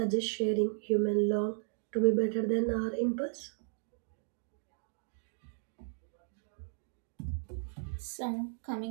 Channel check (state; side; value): silent; left; digital silence